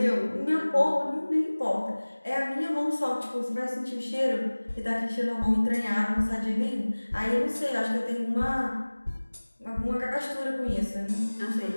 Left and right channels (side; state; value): both; inverted; correlation -1.00